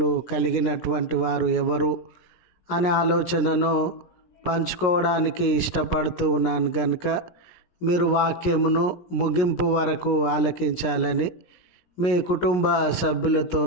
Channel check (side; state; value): right; late; 17 ms